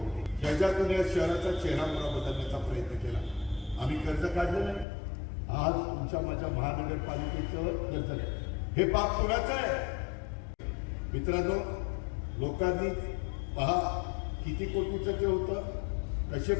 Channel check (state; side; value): drops out; right; at 4.9 s